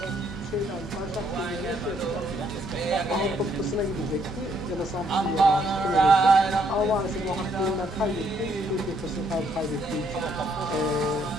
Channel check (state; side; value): normal; both; correlation 0.69